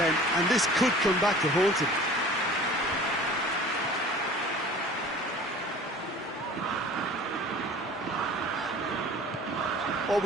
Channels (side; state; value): both; normal; correlation 0.44